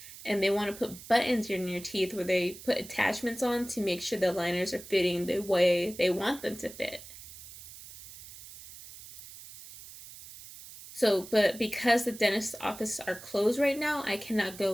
And they want to put buttons in your teeth where they put attachments on to make sure the liners are fitting the way they want them to fit. So, but because the dentist's offices are closed right now, I cannot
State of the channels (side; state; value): right; noise; hiss, 16 dB below the sound